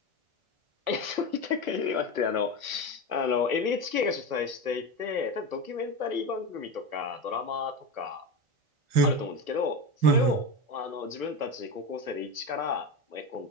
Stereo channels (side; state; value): left; late; 1.2 ms